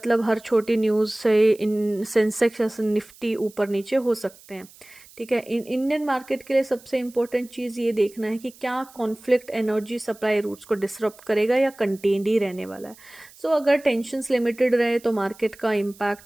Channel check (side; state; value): right; noise; hiss, 23 dB below the sound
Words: हर छोटी न्यूज़ से इन सेंसेक्स या निफ्टी ऊपर नीचे हो सकते हैं। ठीक है, इंडियन मार्केट के लिए सबसे इम्पोर्टेंट चीज़ ये देखना है कि क्या कॉन्फ्लिक्ट एनर्जी सप्लाई रूट्स को डिसरप्ट करेगा या कंटेन्ड ही रहने वाला है। सो अगर टेंशन्स लिमिटेड रहे तो मार्केट का